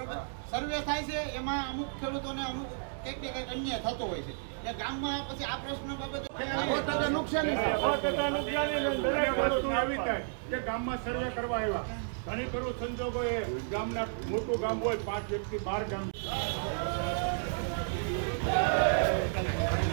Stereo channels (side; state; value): left; silent; digital silence